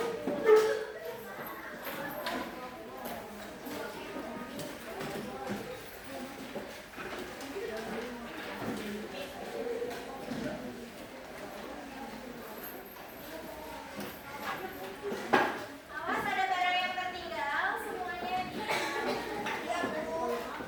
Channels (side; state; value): both; identical; correlation 1.00